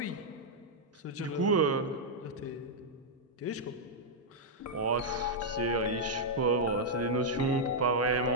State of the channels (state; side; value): normal; both; correlation -0.05